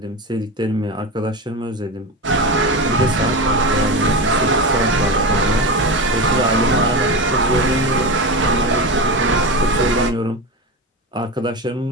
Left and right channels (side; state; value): both; normal; correlation 0.21